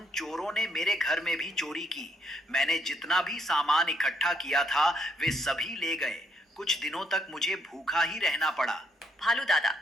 चोरों ने मेरे घर में भी चोरी की। मैंने जितना भी सामान इकट्ठा किया था वे सभी ले गए। कुछ दिनों तक मुझे भूखा ही रहना पड़ा। भालू दादा,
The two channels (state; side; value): normal; both; correlation 0.72